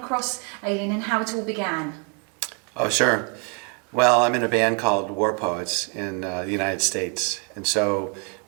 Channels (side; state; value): left; quieter; 37.4 dB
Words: Aileen and how it all began. Oh, sure. Well, I'm in a band called War Poets in the United States, and so